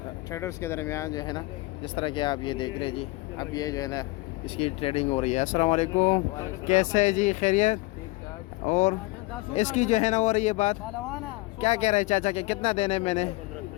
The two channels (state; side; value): quieter; right; 22.4 dB